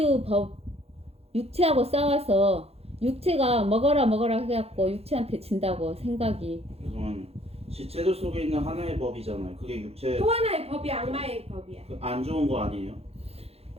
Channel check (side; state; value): left; late; 0.29 ms